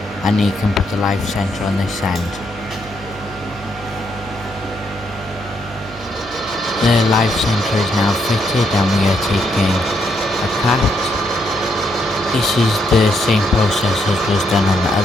and you can put the live centre on this end. The live centre is now fitted and we are taking a cut. This is the same process as was done on the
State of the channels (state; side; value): noise; right; hum, 19 dB below the sound